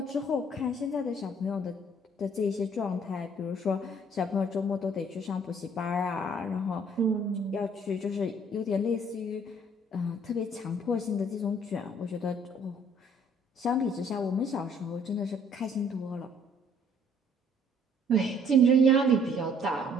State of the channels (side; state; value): both; normal; correlation 0.60